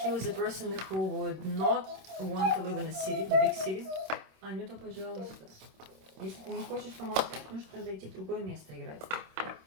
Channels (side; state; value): left; late; 26 ms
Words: was a person who would not want to live in a city, the big city. Анюта, пожалуйста. Если ты не хочешь помолчать, нужно тогда идти в другое место играть.